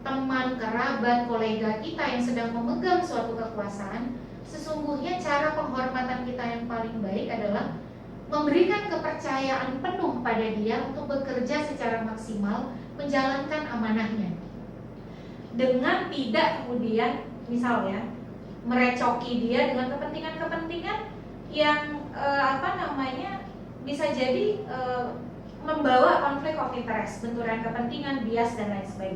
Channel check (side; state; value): both; identical; correlation 1.00